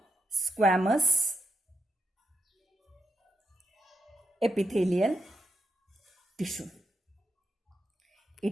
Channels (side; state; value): both; normal; correlation 0.83